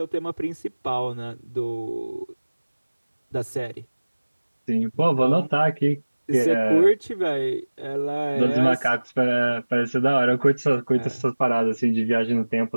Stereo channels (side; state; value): both; inverted; correlation -1.00